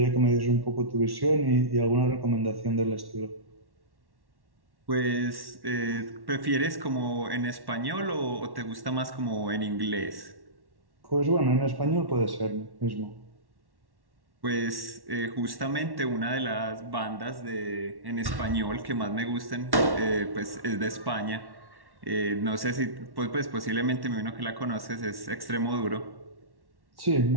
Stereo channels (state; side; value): late; left; 1.1 ms